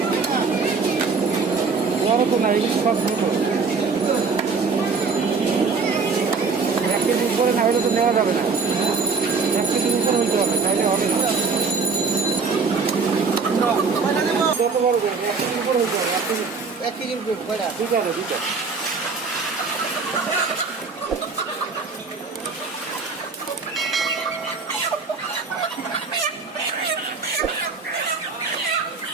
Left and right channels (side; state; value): left; quieter; 4.8 dB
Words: বড় তো না ইলিশ মাছ ছোট 1 কেজির উপরে না হলে তো নেওয়া যাবে না 1 কেজির উপরে হইতে হবে তাইলে হবে না কত বড় 1 কেজির উপরে হইতে হবে 1 কেজির উপরে কয়টা দুইটা